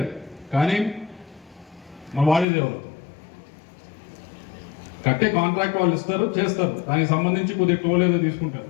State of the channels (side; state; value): right; drops out; at 2.5 s